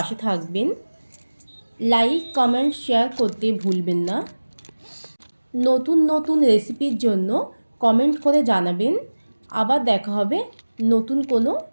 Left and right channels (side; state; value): both; inverted; correlation -1.00